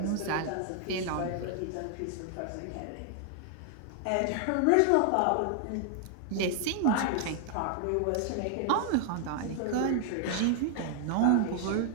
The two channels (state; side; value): different; both; correlation 0.00